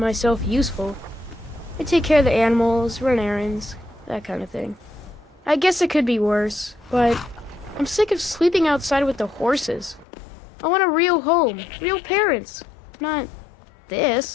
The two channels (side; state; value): right; drops out; at 10.1 s